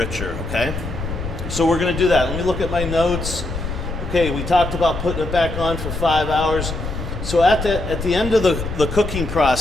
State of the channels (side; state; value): left; noise; rumble, 6 dB below the sound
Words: okay? So we're gonna do that. Let me look at my notes. Okay, we talked about putting it back on for 5 hours. So at the end of the cooking